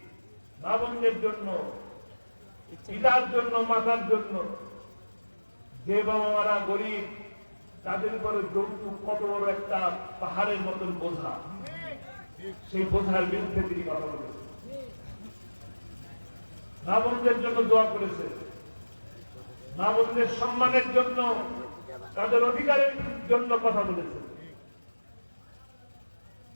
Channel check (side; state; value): both; inverted; correlation -1.00